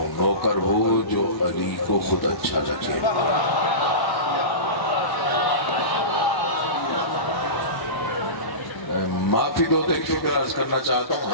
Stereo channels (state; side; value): late; right; 1.0 ms